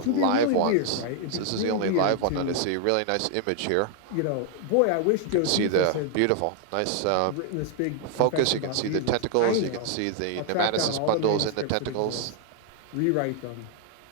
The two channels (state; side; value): different; both; correlation 0.00